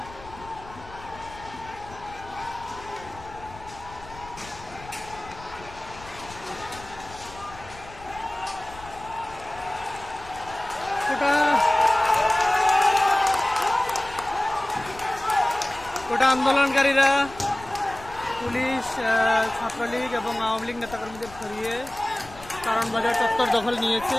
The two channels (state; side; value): noise; left; rumble, 18 dB below the sound